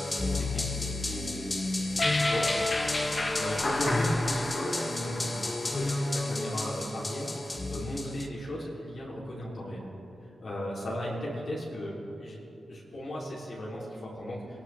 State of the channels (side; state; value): both; normal; correlation 0.93